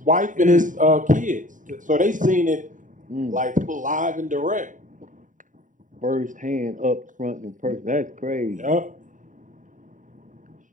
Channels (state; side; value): late; left; 0.38 ms